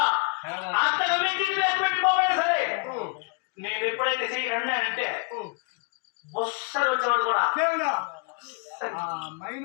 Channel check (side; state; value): right; quieter; 32.7 dB